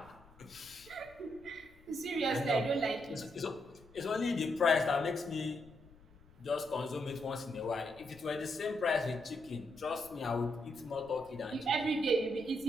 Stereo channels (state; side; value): noise; left; rumble, 25 dB below the sound